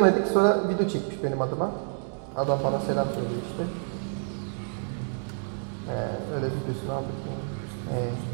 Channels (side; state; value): left; silent; 59 dB below the other